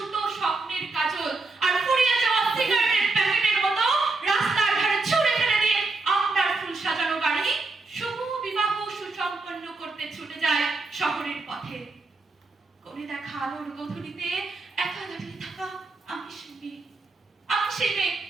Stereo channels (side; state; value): left; quieter; 3.5 dB